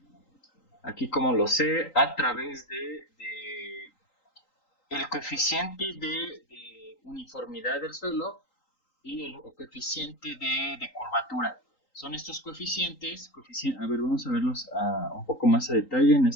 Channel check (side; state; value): right; late; 3.8 ms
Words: Aquí como lo sé, a través de el coeficiente de uniformidad del suelo y el coeficiente de curvatura. Son estos coeficientes, a ver, vamos a verlos un poco más a detalle